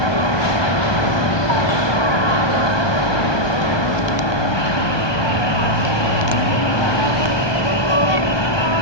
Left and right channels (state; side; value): late; right; 1.2 ms